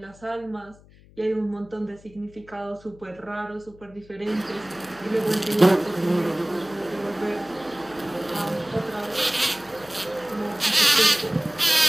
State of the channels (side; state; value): left; noise; hum, 24 dB below the sound